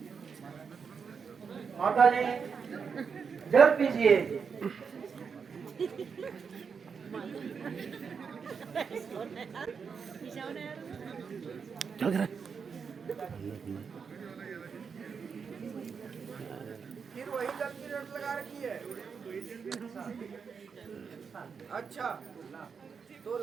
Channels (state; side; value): quieter; left; 6.0 dB